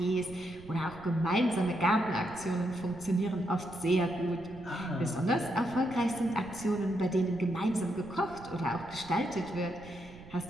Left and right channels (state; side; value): noise; right; rumble, 19 dB below the sound